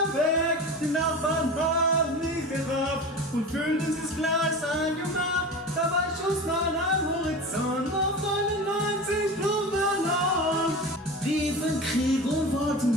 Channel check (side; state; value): both; normal; correlation 0.31